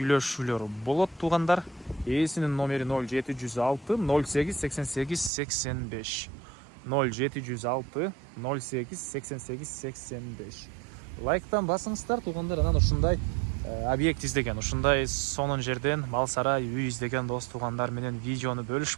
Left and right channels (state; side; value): drops out; left; at 5.3 s